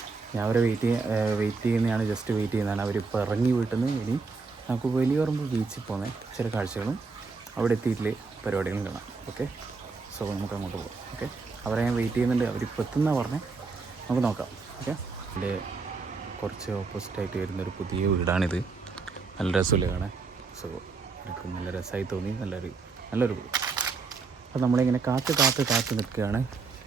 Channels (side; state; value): left; quieter; 4.4 dB